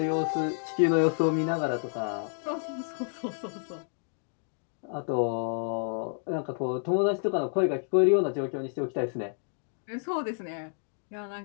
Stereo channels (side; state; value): right; silent; 58 dB below the other